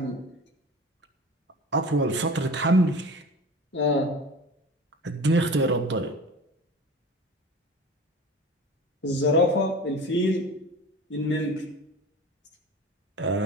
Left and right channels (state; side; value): normal; both; correlation 0.36